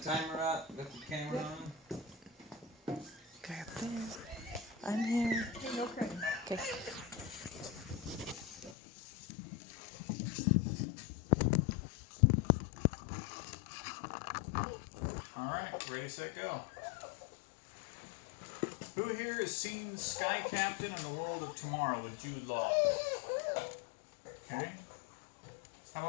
timer up, got the camera on. Okay, up there. I'm here. Hey, no crying. Okay. Alright, ready, set, go. Who here has seen Sky Captain and the World of Tomorrow with Jude Law? Okay. How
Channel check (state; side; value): drops out; right; at 8.8 s